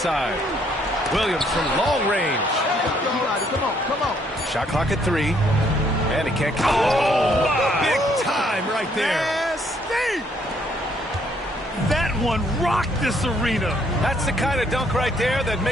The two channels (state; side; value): normal; both; correlation 0.68